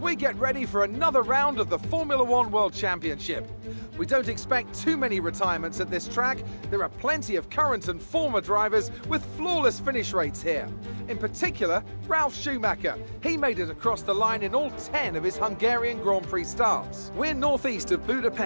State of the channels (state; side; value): inverted; both; correlation -1.00